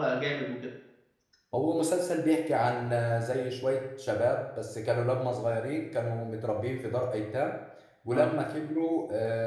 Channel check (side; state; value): both; identical; correlation 1.00